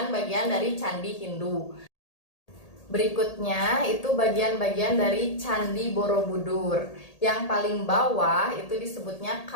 dari candi Hindu. Berikutnya itu bagian-bagian dari Candi Borobudur. Yang paling bawah itu disebutnya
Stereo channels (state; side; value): late; right; 1.8 ms